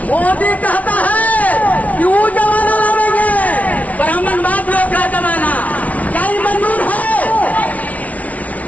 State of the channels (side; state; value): right; late; 0.069 ms